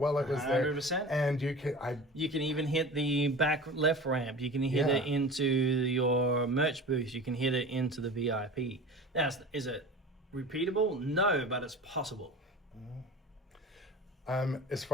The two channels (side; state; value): both; normal; correlation 0.36